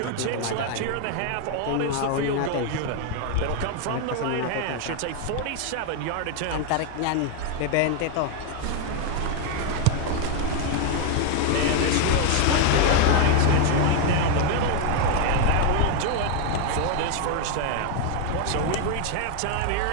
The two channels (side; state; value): both; different; correlation 0.01